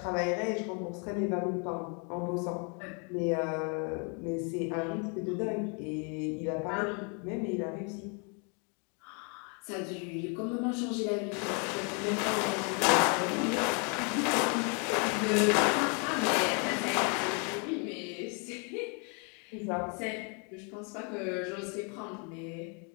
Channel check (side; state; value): right; quieter; 36.5 dB